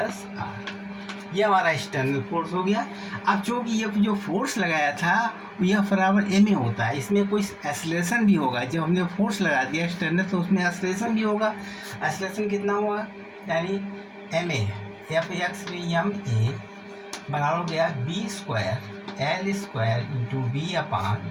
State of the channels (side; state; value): both; identical; correlation 1.00